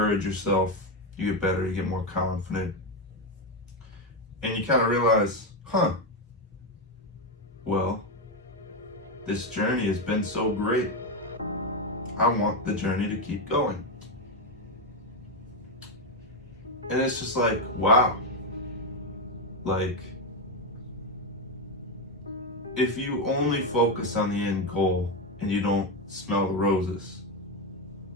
yourself, you get better, you get more confident. And you kind of realize, well, this journey has been so great. I want the journey to keep going. And it's just like, wow. Like, if you only focus on the end goal and you don't smell the roses,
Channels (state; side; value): normal; both; correlation 0.08